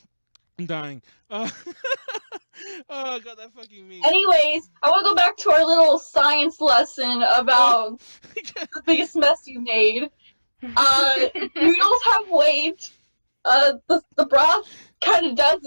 I'm dying. Oh god, that fucking meme. Anyways, I want to go back to our little science lesson about the biggest mess you made. Noodles have weight. The broth kind of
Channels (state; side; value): inverted; both; correlation -1.00